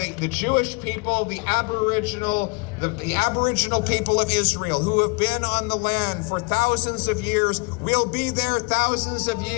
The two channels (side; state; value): right; quieter; 29.2 dB